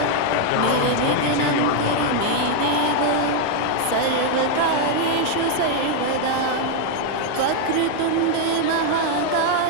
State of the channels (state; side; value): different; both; correlation 0.00